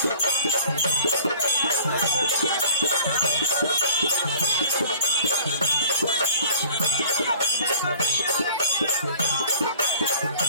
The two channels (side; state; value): both; inverted; correlation -0.48